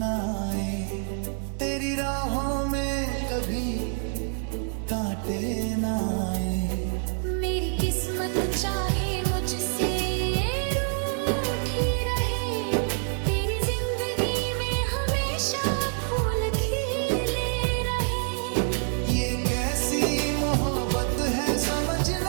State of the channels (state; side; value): silent; left; 60 dB below the other